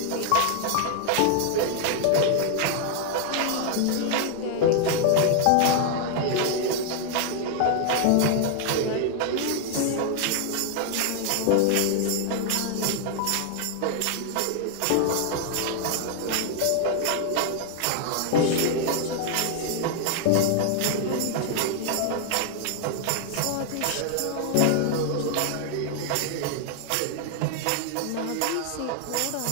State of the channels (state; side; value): different; both; correlation 0.00